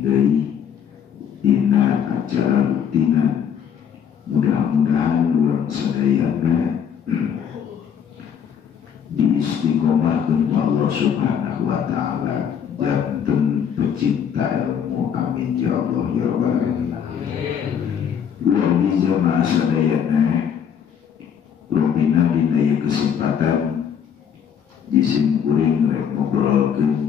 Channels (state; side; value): quieter; right; 8.1 dB